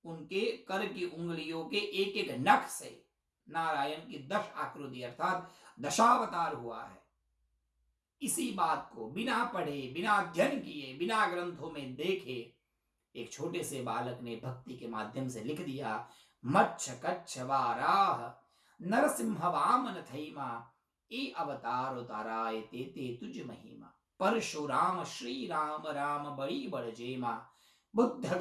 उनके कर की उंगलियों के एक एक नख से नारायण की 10 आकृति अर्थात दशावतार हुआ है। इसी बात को बिना पढ़े, बिना अध्ययन किए, बिना ग्रंथों में देखे एक छोटे से बालक ने भक्ति के माध्यम से लिख दिया। मच्छ कच्छ वाराह नरसिंह वामन थैमा, ए अवतार उताराय ते ते तुझ महिमा। परशुराम श्री राम राम बड़ी बड़ जेमा, बुद्ध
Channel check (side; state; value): both; identical; correlation 1.00